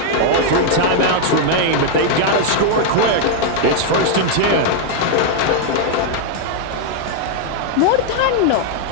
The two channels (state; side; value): different; both; correlation 0.00